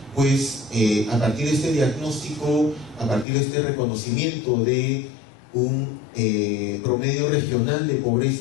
pues a partir de este diagnóstico, a partir de este reconocimiento de un promedio regional de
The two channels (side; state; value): right; drops out; at 3.2 s